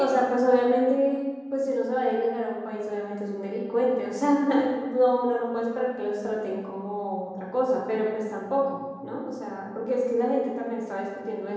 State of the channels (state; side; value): identical; both; correlation 1.00